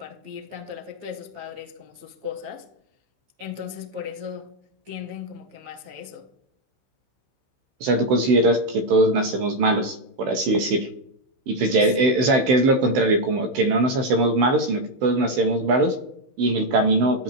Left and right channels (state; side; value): late; left; 16 ms